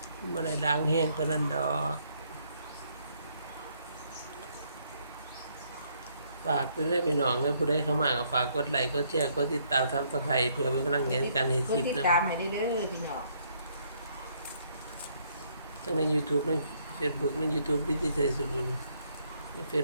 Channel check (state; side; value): inverted; both; correlation -0.69